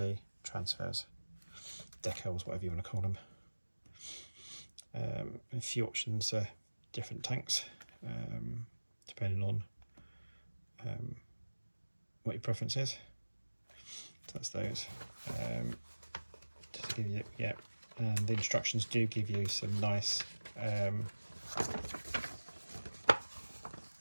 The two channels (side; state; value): both; inverted; correlation -1.00